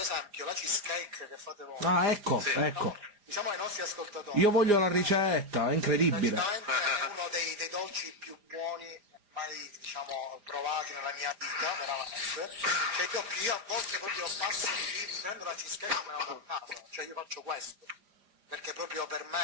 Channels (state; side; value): late; left; 4.9 ms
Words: la cheesecake che fate voi... Ah, ecco, sì, ecco. Diciamo ai nostri ascoltatori... Io voglio la ricetta, è incredibile. Praticamente è uno dei dolci più buoni mai, diciamo, provati nella mia vita, veramente. Cioè io a volte proprio passo di lì, mi prendo la cheesecake e me la vado a casa, cioè io faccio questo, perché proprio per